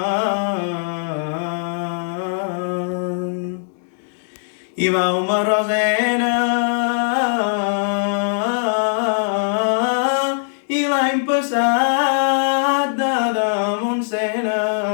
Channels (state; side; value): silent; right; digital silence